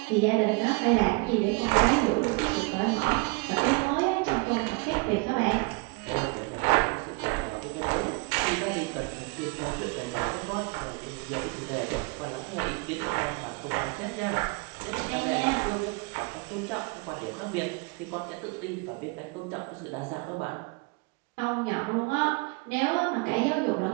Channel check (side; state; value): left; quieter; 29.0 dB